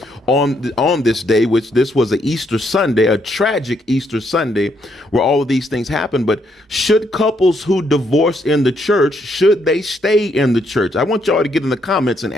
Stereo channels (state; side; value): normal; both; correlation 0.74